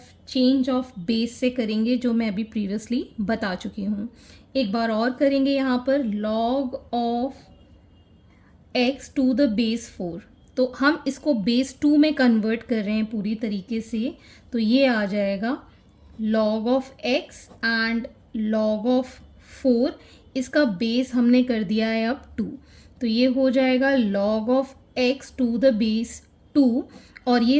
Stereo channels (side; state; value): both; identical; correlation 1.00